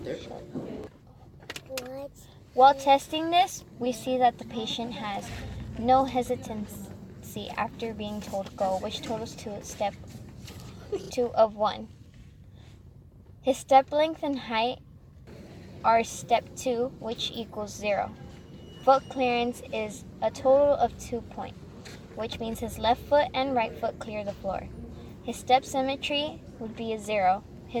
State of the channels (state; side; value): identical; both; correlation 1.00